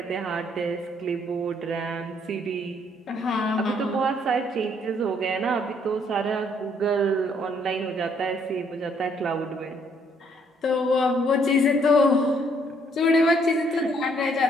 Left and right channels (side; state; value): both; normal; correlation 0.67